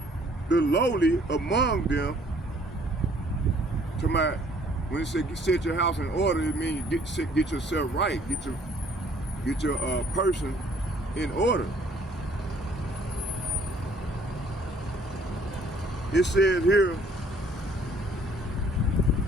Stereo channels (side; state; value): both; normal; correlation 0.59